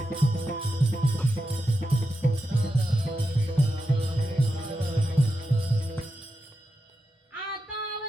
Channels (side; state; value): both; normal; correlation 0.88